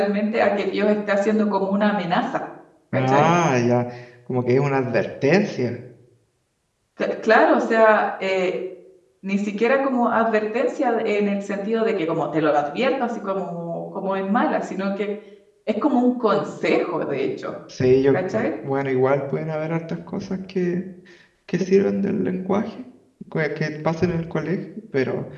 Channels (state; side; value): identical; both; correlation 1.00